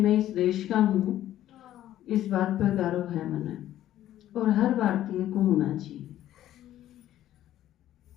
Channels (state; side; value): quieter; right; 12.8 dB